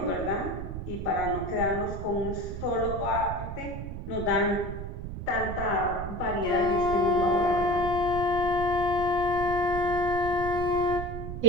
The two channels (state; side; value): noise; right; rumble, 7 dB below the sound